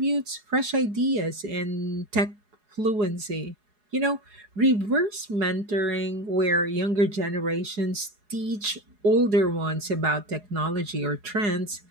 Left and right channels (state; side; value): late; left; 4.8 ms